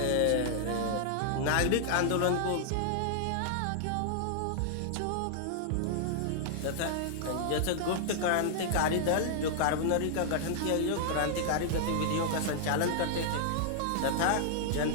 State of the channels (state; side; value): different; both; correlation -0.01